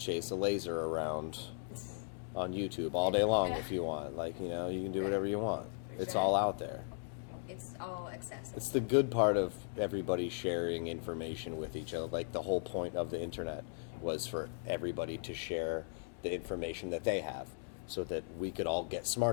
a laser around on YouTube all day long if you want. Like, you know, you can do whatever you want. It's all out there. It's all accessible. It's the good part of everybody sharing information with each other. Like, the whole point of the internet was for everybody to share the information that they have so that we could all get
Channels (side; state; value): right; silent; digital silence